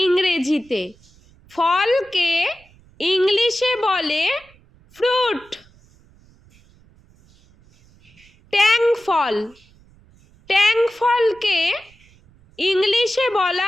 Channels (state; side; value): noise; right; rumble, 29 dB below the sound